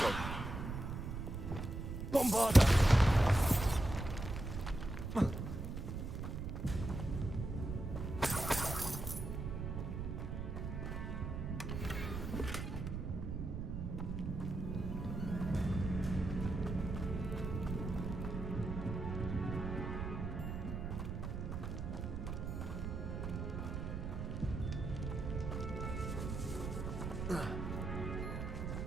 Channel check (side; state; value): right; noise; rumble, 4 dB below the sound